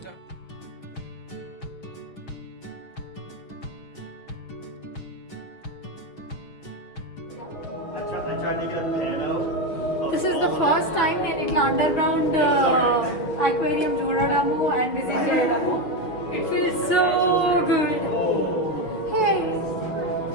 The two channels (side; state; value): right; late; 6.0 ms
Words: This is the first time నేను ఇట్లా అండర్ గ్రౌండ్ అక్వేరియం చూడడము అండ్ విజిట్ చేయడము. It feels so good.